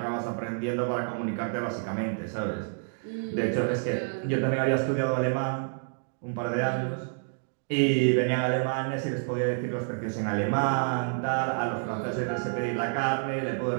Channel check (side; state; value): left; silent; digital silence